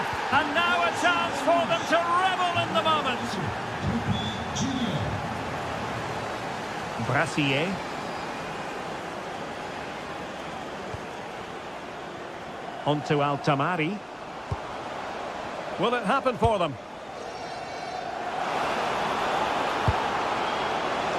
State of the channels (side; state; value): both; identical; correlation 1.00